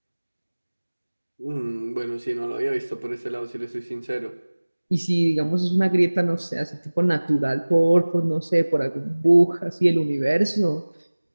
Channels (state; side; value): inverted; both; correlation -1.00